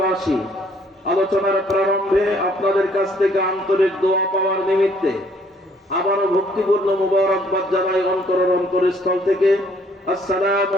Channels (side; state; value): both; normal; correlation 0.63